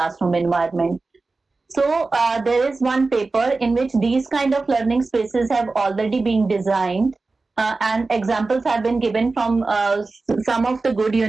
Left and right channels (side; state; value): left; quieter; 3.7 dB